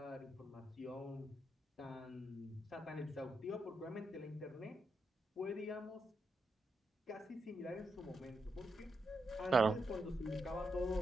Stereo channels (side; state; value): both; normal; correlation 0.83